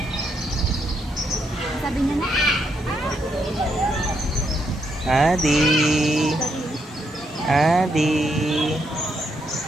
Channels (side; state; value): both; normal; correlation 0.78